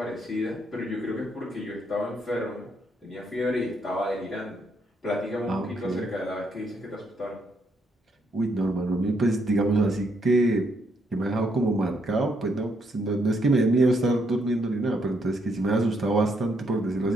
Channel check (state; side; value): normal; both; correlation 0.74